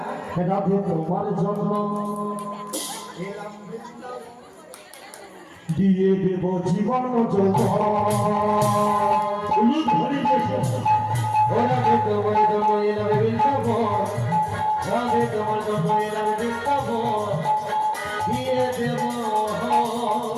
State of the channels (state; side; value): identical; both; correlation 1.00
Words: রাধে তোমার জন্য দিয়ে দেব জীবন রাধে তোমার জন্য এলাম বৃন্দাবন, রাধে তোমার জন্য এলাম বৃন্দাবন, দিয়ে দেব